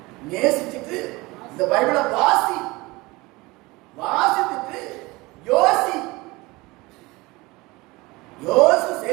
நேசிச்சுட்டு இந்த பைபிளை வாசி, வாசித்துட்டு யோசி, யோசி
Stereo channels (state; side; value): quieter; left; 22.4 dB